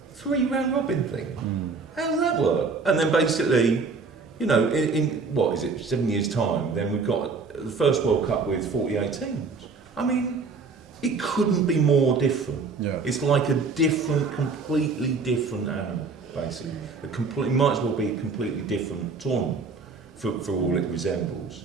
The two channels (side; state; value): left; quieter; 4.5 dB